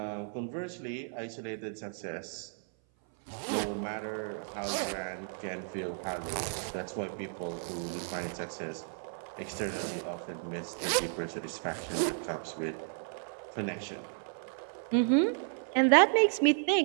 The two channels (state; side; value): silent; left; 56 dB below the other